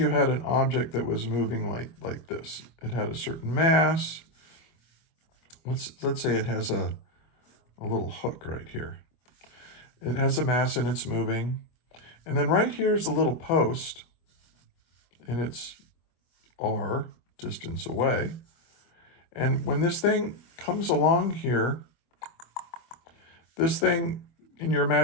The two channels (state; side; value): late; right; 24 ms